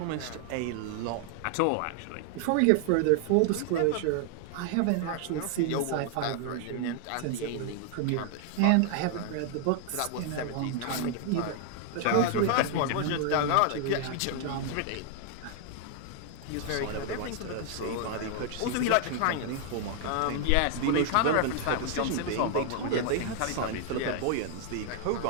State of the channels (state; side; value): different; both; correlation 0.00